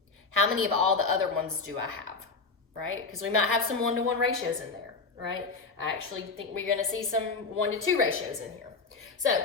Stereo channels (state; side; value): quieter; right; 4.2 dB